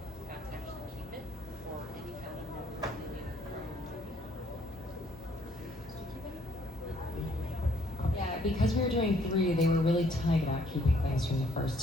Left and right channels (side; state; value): both; normal; correlation 0.65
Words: got to actually keep it for any kind of memorabilia from Yeah, because we were doing 3, they were really tight about keeping things from the first